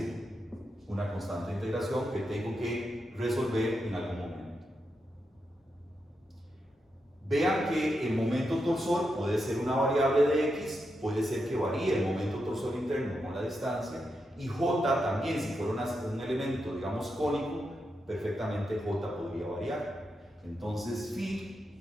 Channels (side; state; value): both; normal; correlation 0.85